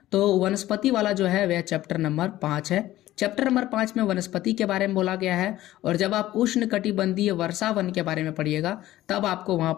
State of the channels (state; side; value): quieter; right; 15.1 dB